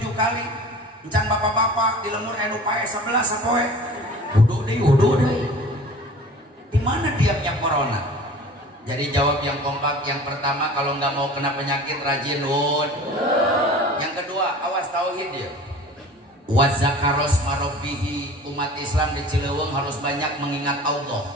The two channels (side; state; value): both; normal; correlation 0.42